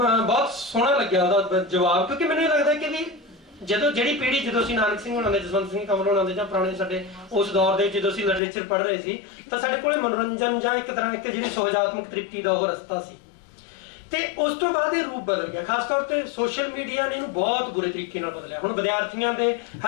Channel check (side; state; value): right; drops out; at 8.4 s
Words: ਸੋਹਣਾ ਲੱਗਿਆ ਉਹਦਾ ਜਵਾਬ, ਕਿਉਂਕਿ ਮੈਨੂੰ ਇਹ ਲੱਗਦਾ ਕਿ ਵੀ ਜਦੋਂ ਅਸੀਂ ਨਾਨਕ ਸਿੰਘ ਹੋਣਾ ਦੇ, ਜਸਵੰਤ ਸਿੰਘ ਕੰਵਲ ਹੋਣਾ ਦੇ ਜਾਂ ਪੁਰਾਣੇ ਸਾਡੇ ਉਸ ਦੌਰ ਦੇ ਜਦੋਂ ਅਸੀਂ ਲਿਟਰੇਚਰ ਪੜ੍ਹ ਰਹੇ ਸੀ ਤਾਂ ਸਾਡੇ ਕੋਲੇ ਮਨੋਰੰਜਨ ਜਾਂ ਇੱਕ ਤਰ੍ਹਾਂ ਇੱਕ ਜਿਹੜੀ ਸੁਹਜਾਤਮਕ ਤ੍ਰਿਪਤੀ ਦਾ ਉਹ ਰਸਤਾ ਸੀ। ਤੇ ਉਸ ਤੋਂ ਬਾਅਦ ਇਹ ਰੂਪ ਬਦਲ ਗਿਆ। ਖਾਸ ਤੌਰ ਤੇ ਸੋਸ਼ਲ ਮੀਡੀਆ ਨੇ ਇਹਨੂੰ ਬਹੁਤ ਬੁਰੇ ਤਰੀਕੇ ਨਾਲ ਬਦਲਿਆ। ਹੁਣ ਵਿਦਿਆਰਥੀਆਂ ਦੇ,